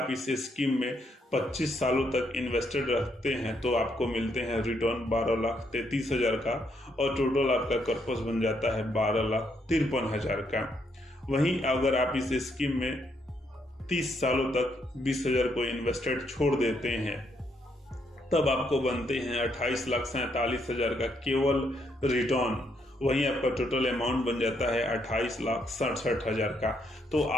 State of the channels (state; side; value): normal; both; correlation 0.75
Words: इस स्कीम में 25 सालों तक इन्वेस्टेड रखते हैं तो आपको मिलते हैं रिटर्न 12,33,000 का और टोटल आपका कर्पस बन जाता है 12,53,000 का। वहीं अगर आप इस स्कीम में 30 सालों तक 20,000 को इन्वेस्टेड छोड़ देते हैं तब आपको बनते हैं 28,47,000 का केवल रिटर्न। वहीं आपका टोटल अमाउंट बन जाता है 28,67,000 का। तो